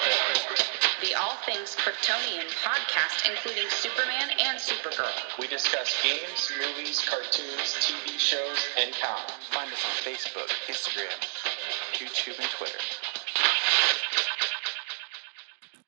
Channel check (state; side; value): silent; left; 58 dB below the other